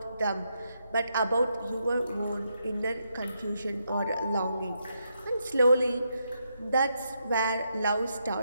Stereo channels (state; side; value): inverted; both; correlation -0.80